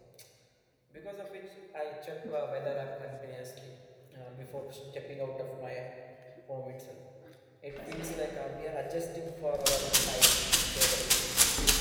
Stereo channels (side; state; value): both; identical; correlation 1.00